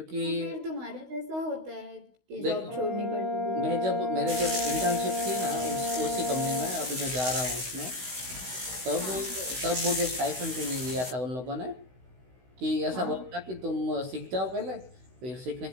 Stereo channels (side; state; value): left; late; 16 ms